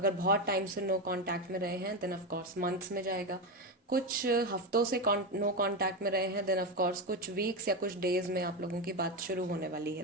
बहुत टाइम से नो कांटेक्ट में रहे हैं देन ऑफ कोर्स मंथ्स में जाएगा, कुछ हफ्तों से नो कांटेक्ट में रहे हैं, देन ऑफ कोर्स कुछ वीक्स या कुछ डेज में आप लोगों की बात शुरू होने वाली है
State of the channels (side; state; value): both; normal; correlation 0.13